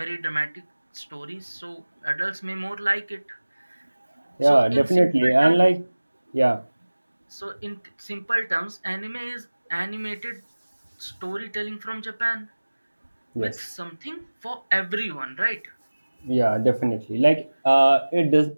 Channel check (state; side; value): inverted; both; correlation -1.00